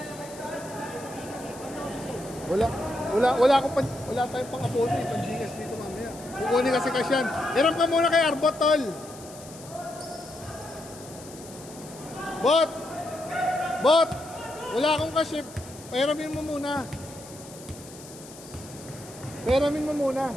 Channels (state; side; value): noise; left; hiss, 18 dB below the sound